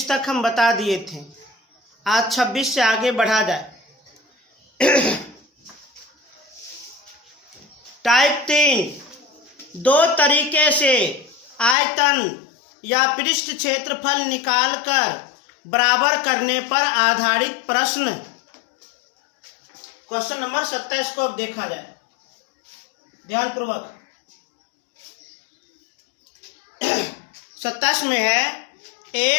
तक हम बता दिए थे। आज 26 से आगे बढ़ा जाए। टाइप 3, दो तरीके से आयतन या पृष्ठ क्षेत्रफल निकालकर बराबर करने पर आधारित प्रश्न। क्वेश्चन नंबर 27 को अब देखा जाए ध्यानपूर्वक। 27 में है,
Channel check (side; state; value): right; drops out; at 11.8 s